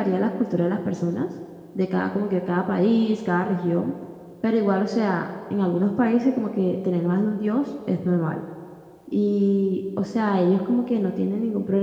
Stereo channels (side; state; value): both; identical; correlation 1.00